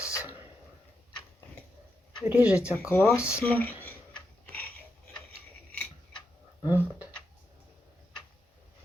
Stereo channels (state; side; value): normal; both; correlation 0.85